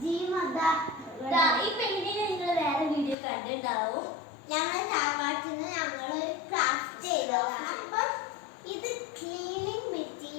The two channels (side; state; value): right; drops out; at 3.2 s